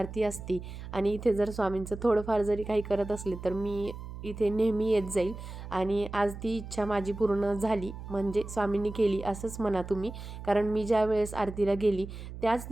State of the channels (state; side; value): noise; right; hum, 11 dB below the sound